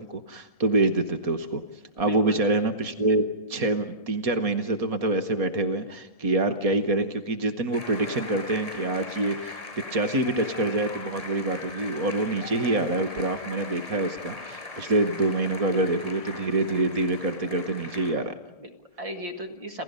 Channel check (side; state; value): left; late; 1.7 ms